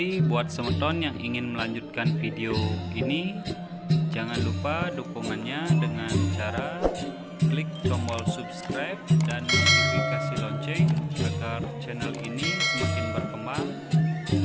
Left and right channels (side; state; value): both; identical; correlation 1.00